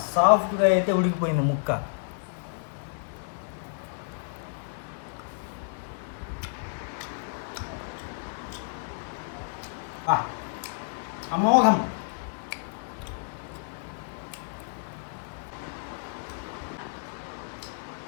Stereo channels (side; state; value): right; silent; digital silence